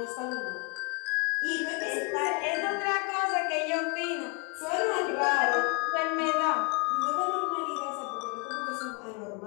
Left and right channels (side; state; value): right; quieter; 32.1 dB